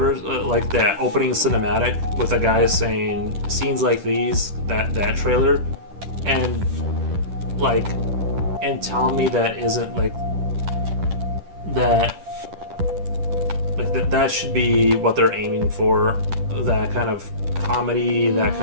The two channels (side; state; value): left; late; 10 ms